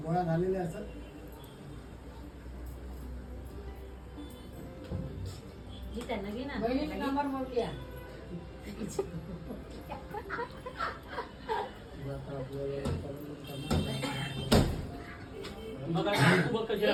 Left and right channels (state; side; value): identical; both; correlation 1.00